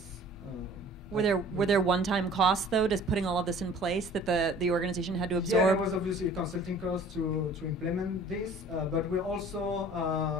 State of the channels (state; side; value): normal; both; correlation 0.49